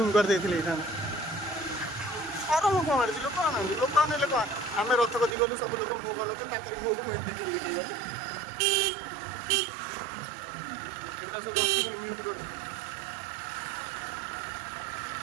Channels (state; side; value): drops out; left; at 5.4 s